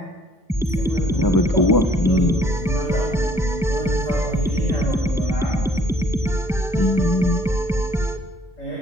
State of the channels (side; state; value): both; normal; correlation 0.59